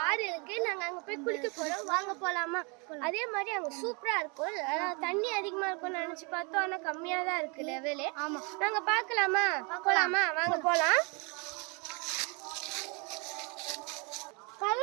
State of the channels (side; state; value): left; quieter; 31.9 dB